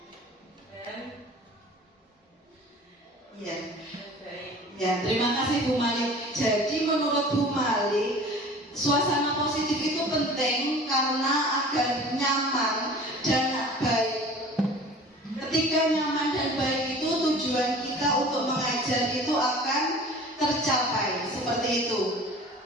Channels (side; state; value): both; normal; correlation 0.43